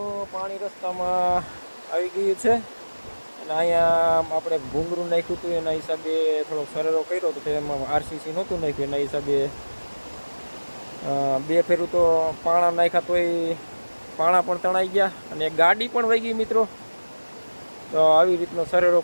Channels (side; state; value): both; inverted; correlation -1.00